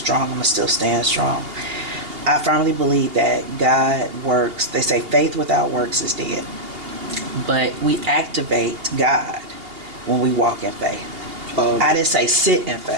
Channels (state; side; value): late; left; 2.8 ms